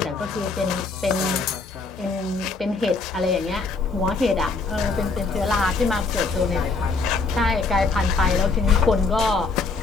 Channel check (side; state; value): right; quieter; 4.1 dB